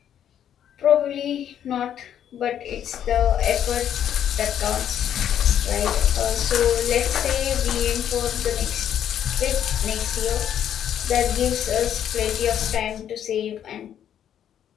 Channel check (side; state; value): right; quieter; 9.8 dB